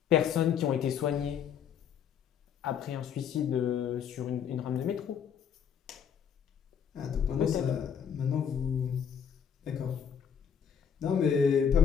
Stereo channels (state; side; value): quieter; right; 7.8 dB